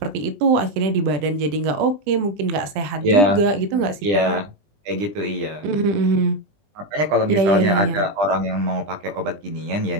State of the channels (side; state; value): left; late; 20 ms